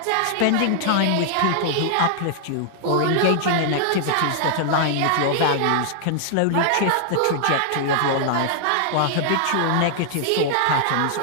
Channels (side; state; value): both; different; correlation -0.01